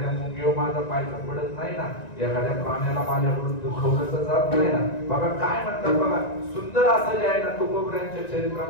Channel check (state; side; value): late; right; 1.9 ms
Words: मुंगीवर माझा पाय पडत नाही ना, एखाद्या प्राण्याला माझ्याकडून दुखवलं तर जात नाही ना. बघा काय म्हणतात बघा, सुंदर असं जे आहे ना तुकोबऱ्यांच्या